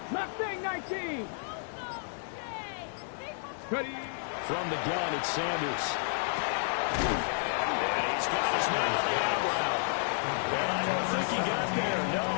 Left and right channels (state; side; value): silent; right; digital silence